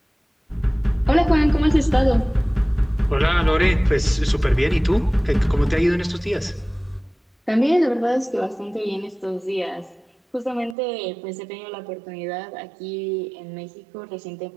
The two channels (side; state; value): left; drops out; at 10.8 s